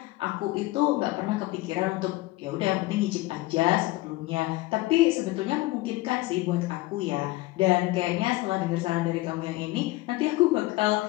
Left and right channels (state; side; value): quieter; right; 19.4 dB